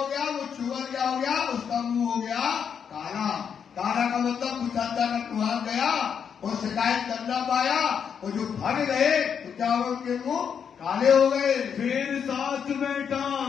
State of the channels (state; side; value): quieter; right; 7.3 dB